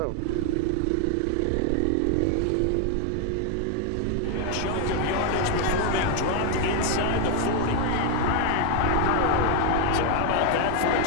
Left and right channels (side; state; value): both; different; correlation 0.01